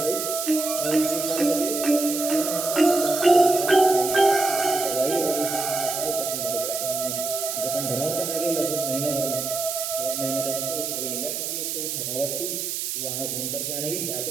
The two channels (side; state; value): right; noise; hiss, 3 dB below the sound